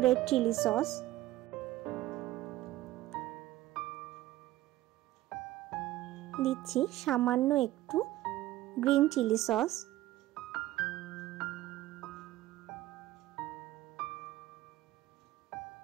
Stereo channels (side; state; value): left; quieter; 15.9 dB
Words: রেড চিলি সস, দিচ্ছি সামান্য একটু গ্রিন চিলি সস,